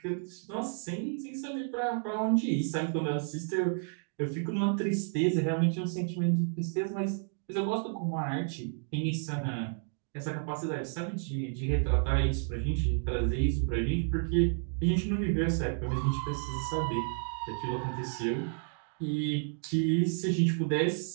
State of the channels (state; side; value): silent; left; 57 dB below the other